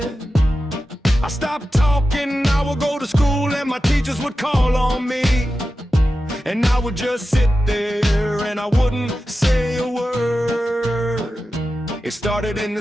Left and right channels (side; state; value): both; normal; correlation 0.92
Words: I stopped talking, I would go to school and my teachers would call on me. And I would just sit there and I wouldn't say a word. It started in